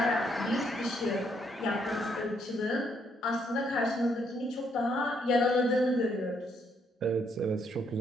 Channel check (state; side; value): normal; both; correlation 0.72